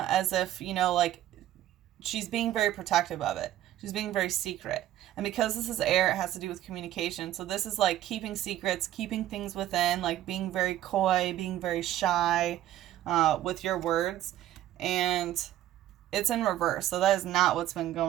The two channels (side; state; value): left; quieter; 13.1 dB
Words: as if, like she's being very protective of it. She's being very secret. And because this is air, it has to do with communication. So this is like keeping secrets, keeping things within, like being very coy, being very shy with your words. And it's in reverse. So that is not what's been